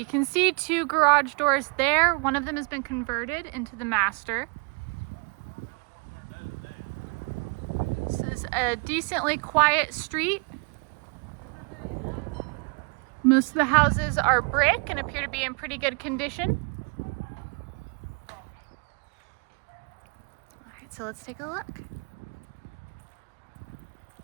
can see two garage doors there. One of them has been converted into the master. This is a decently quiet street. Most of the houses are brick and appear to be in pretty good condition. All right, so let's take a look.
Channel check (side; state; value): left; quieter; 34.5 dB